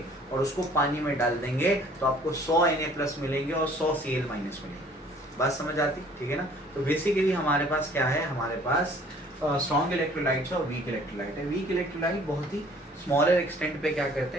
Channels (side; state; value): both; normal; correlation 0.54